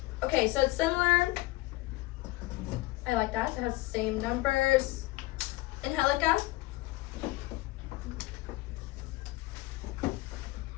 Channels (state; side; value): quieter; right; 20.7 dB